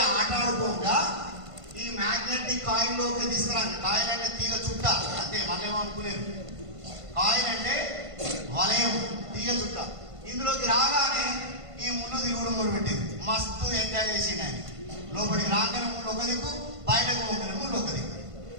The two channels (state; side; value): late; left; 1.5 ms